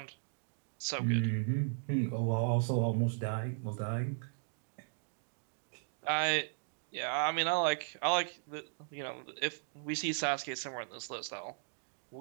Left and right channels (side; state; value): left; silent; digital silence